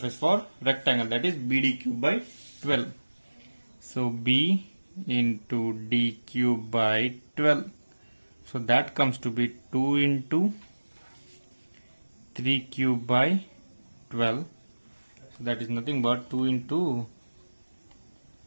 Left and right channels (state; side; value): inverted; both; correlation -1.00